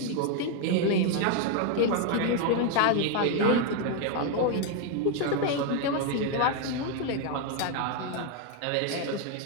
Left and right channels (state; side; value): different; both; correlation 0.01